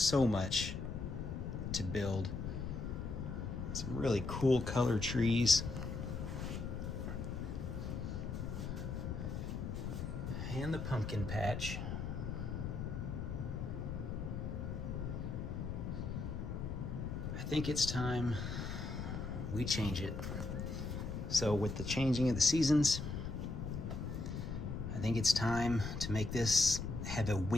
much to build. Some really cool color trees. And the pumpkin patch. I think it's time we change it. So with the changing of the seasons, I think it's time to make this have a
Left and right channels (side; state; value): left; noise; rumble, 4 dB below the sound